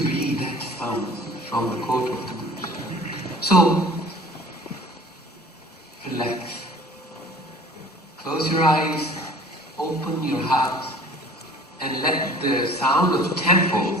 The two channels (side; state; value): both; normal; correlation 0.47